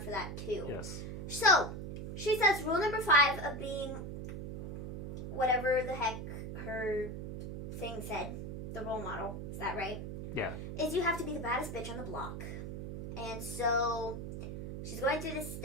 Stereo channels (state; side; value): noise; right; hum, 7 dB below the sound